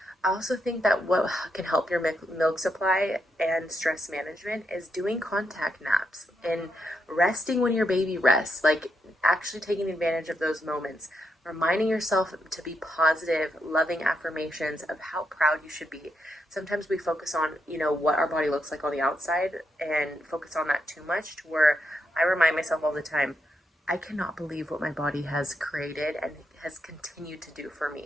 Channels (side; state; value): both; normal; correlation 0.81